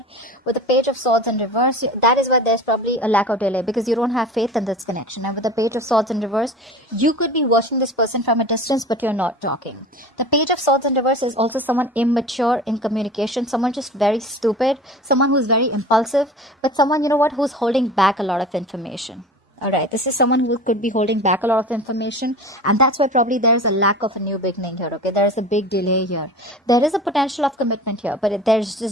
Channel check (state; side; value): normal; both; correlation 0.36